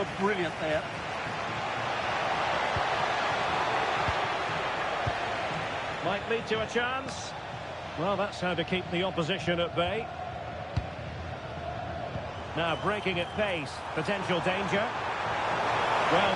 brilliant there. Might lead to a chance. Well, that's how to keep the opposition at bay. Now breaking at pace. Potential danger. Well,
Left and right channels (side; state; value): both; identical; correlation 1.00